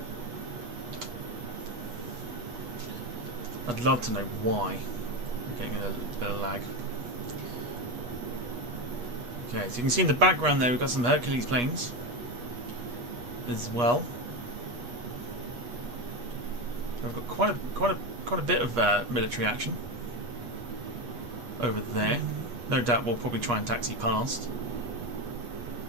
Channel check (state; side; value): late; left; 8.3 ms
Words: I'd love to know why. I'm getting a bit of lag. Okay, so you can see in the background there we've got some Hercules planes as well. We've got quite a bit of military action over there. No doubt we'll probably try and taxi past.